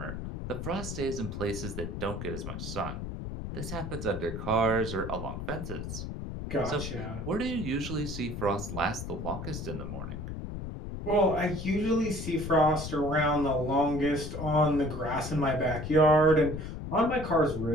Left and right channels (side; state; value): left; noise; rumble, 7 dB below the sound